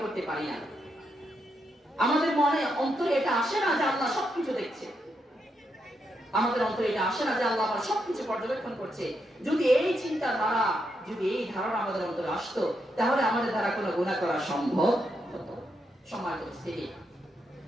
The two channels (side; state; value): both; normal; correlation 0.81